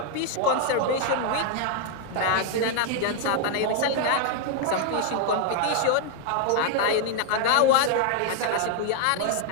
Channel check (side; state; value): both; different; correlation 0.00